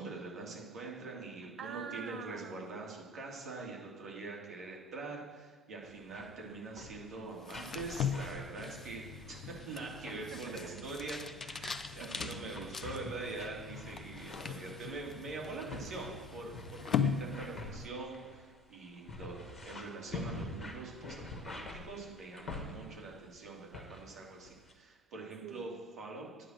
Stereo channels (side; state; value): both; normal; correlation 0.43